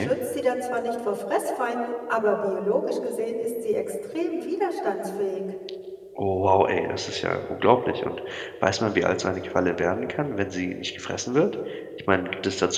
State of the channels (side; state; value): both; identical; correlation 1.00